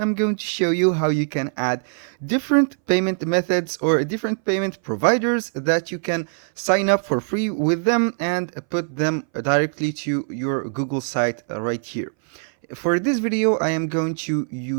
going to show you how you can add different payment methods or different payment providers that you can sign up for free with them and put them directly to your Google site right here. For this video I am going to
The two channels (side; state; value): left; silent; 62 dB below the other